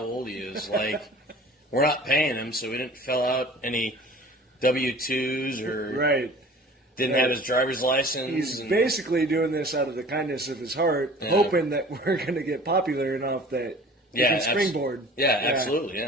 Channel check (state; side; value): normal; both; correlation 0.45